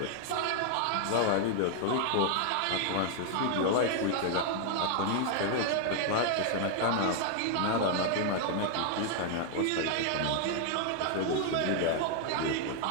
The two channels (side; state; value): both; different; correlation 0.00